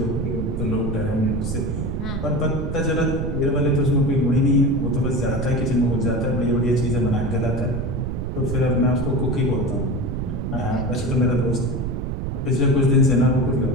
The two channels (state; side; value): noise; right; rumble, 3 dB below the sound